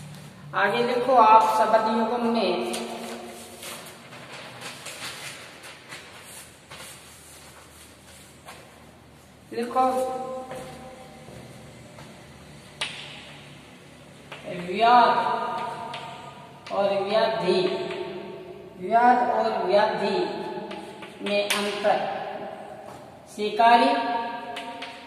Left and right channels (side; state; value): both; identical; correlation 1.00